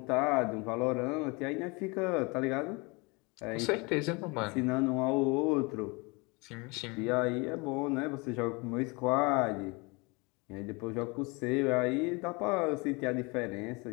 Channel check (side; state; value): right; quieter; 27.9 dB